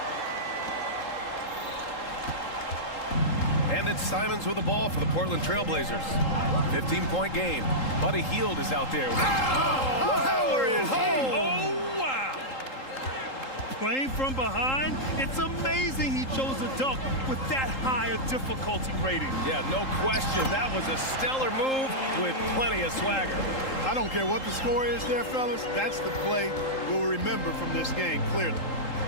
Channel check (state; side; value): late; right; 3.8 ms